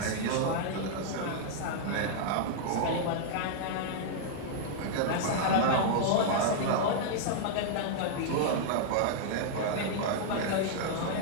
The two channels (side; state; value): both; different; correlation -0.01